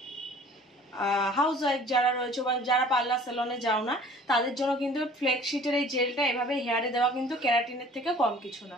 হাউস ওয়াইফ যারা রয়েছে বা যারা পার্লার সেলনে যাও না তাদের জন্য কিন্তু ফ্লেক্সিটের এই জেলটা এভাবে হেয়ারে দেওয়া কিন্তু ক্যারাটিনের থেকে কম কিছু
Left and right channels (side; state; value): both; normal; correlation 0.49